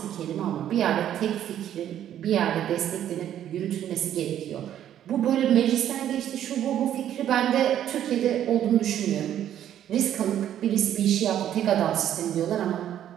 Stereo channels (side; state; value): left; quieter; 10.9 dB